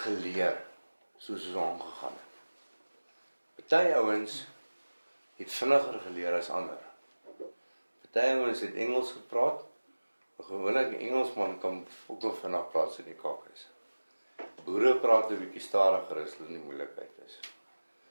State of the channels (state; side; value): inverted; both; correlation -1.00